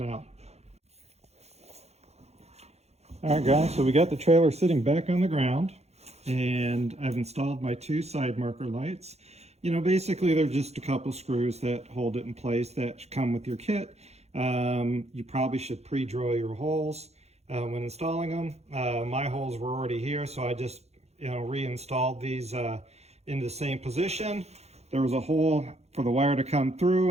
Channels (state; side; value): late; left; 0.31 ms